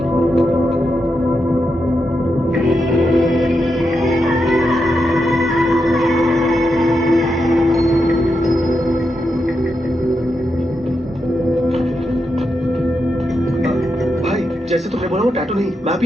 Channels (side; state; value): both; normal; correlation 0.85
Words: भाई जैसे तुमने बोला वो टैटू नहीं, मैप